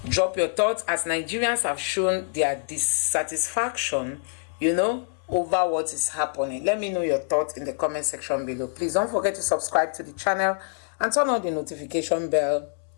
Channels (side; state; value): right; silent; 61 dB below the other